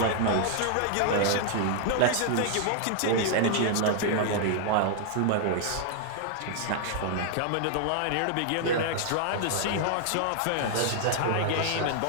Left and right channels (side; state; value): both; different; correlation 0.00